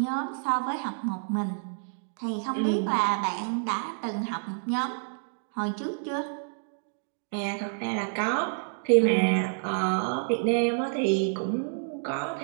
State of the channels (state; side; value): silent; left; digital silence